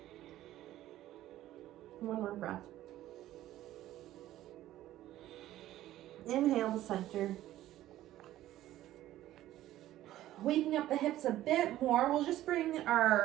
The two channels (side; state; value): left; quieter; 14.1 dB